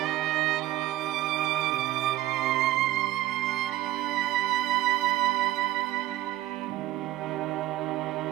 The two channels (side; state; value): left; quieter; 15.5 dB